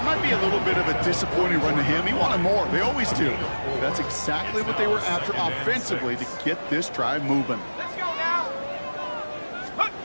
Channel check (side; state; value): both; inverted; correlation -1.00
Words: might be a little bit of a disappointing run to him. He wanted more. They always do. That's exactly what they were after offensively to get this drive moving. Let's go now.